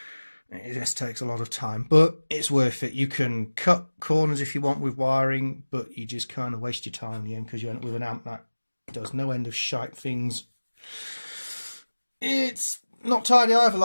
It just takes a lot of time, but it's worth it. You can cut corners if you want with wiring, but you just kind of waste your time in the end because you end up with an amp that does no end of shite things. It's not tidy either,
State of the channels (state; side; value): inverted; both; correlation -1.00